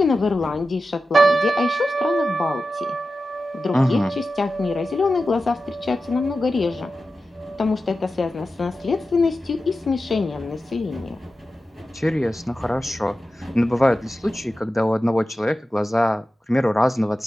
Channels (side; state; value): both; normal; correlation 0.93